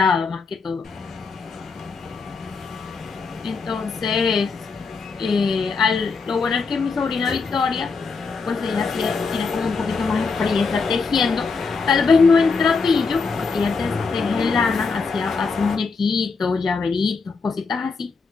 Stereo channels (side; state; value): right; quieter; 4.7 dB